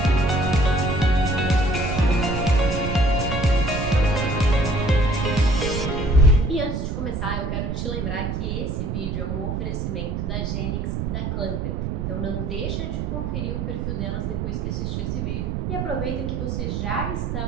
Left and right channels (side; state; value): right; noise; rumble, 2 dB below the sound